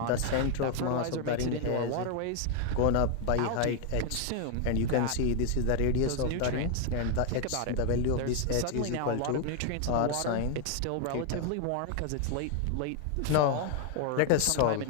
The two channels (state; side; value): different; both; correlation 0.00